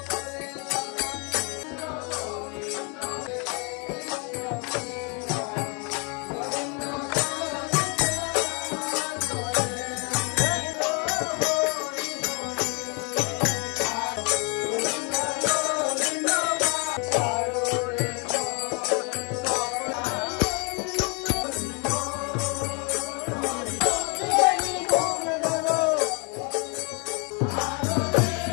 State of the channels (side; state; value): right; quieter; 34.0 dB